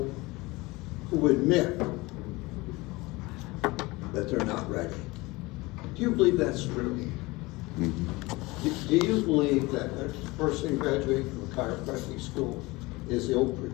who admit that they're not ready. Do you believe that's true? Mm-hmm. Do you believe that a person graduating from a chiropractic school is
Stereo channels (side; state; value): right; quieter; 22.5 dB